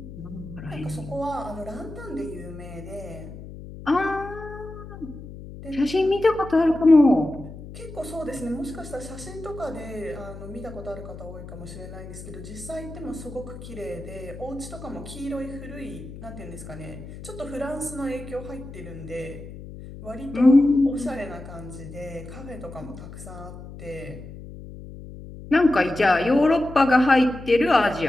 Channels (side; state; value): left; noise; hum, 13 dB below the sound